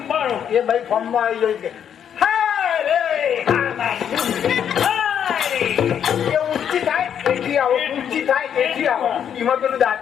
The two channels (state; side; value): quieter; right; 8.7 dB